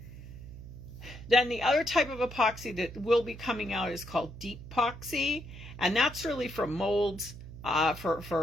Then the other type of epoxy that will be coming out is called deep epoxy, and that's really for molds,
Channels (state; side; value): noise; right; hum, 14 dB below the sound